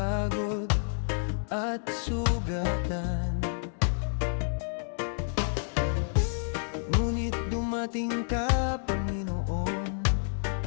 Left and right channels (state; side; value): silent; right; digital silence